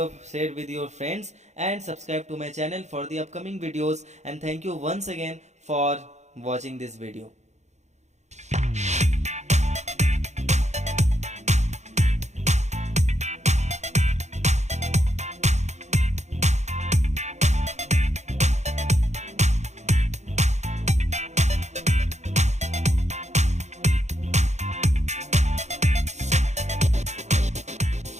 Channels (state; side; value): late; left; 0.33 ms